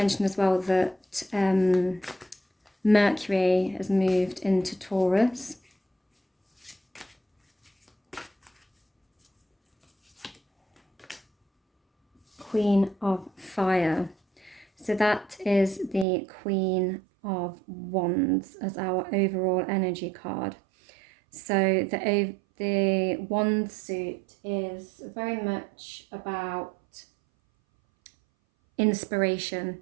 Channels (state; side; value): drops out; left; at 16.1 s